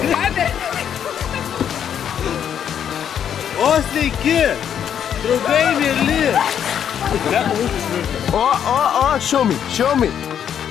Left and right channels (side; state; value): right; quieter; 8.9 dB